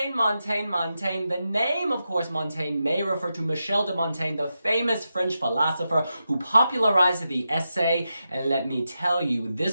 The name, of course, Montaigne may refer to Michel de Montaigne, the famous French philosopher who popularized the essay. And let me tell you,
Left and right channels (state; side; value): inverted; both; correlation -0.89